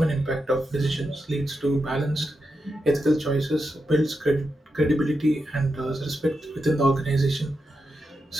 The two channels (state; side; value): normal; both; correlation 0.87